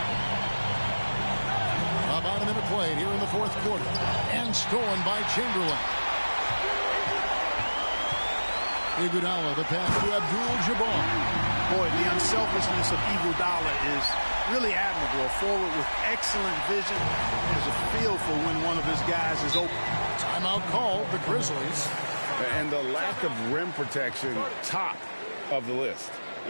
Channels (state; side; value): inverted; both; correlation -1.00